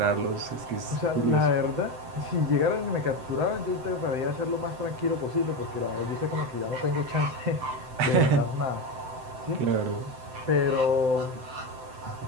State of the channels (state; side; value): late; left; 7.8 ms